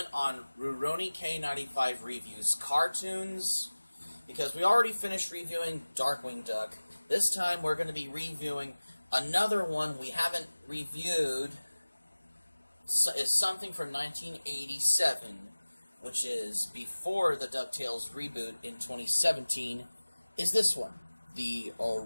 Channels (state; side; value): inverted; both; correlation -1.00